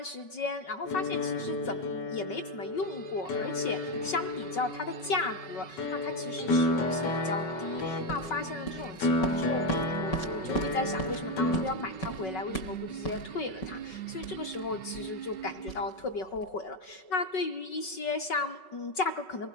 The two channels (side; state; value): right; late; 5.3 ms